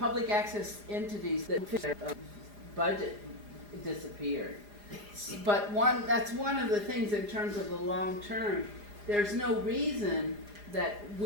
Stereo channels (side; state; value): left; late; 4.9 ms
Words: access entities that their budget disappeared. But that's one of the things in terms of the long term. There's no reason that